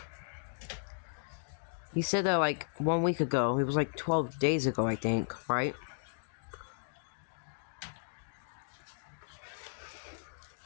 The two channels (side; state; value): right; silent; digital silence